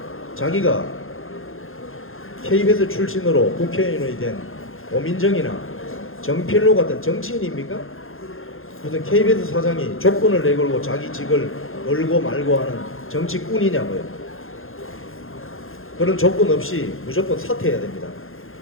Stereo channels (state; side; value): late; right; 0.60 ms